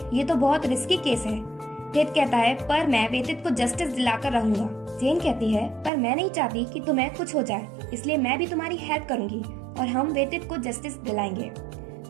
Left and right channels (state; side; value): drops out; left; at 5.9 s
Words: ये तो बहुत रिस्की केस है। थित कहता है पर मैं वेतित को जस्टिस दिलाकर रहूंगा। जेन कहती है पर मैं नहीं चाहती कि तुम्हें कुछ हो जाए, इसलिए मैं भी तुम्हारी हेल्प करूंगी और हम वेतित को जस्टिस दिलाएंगे।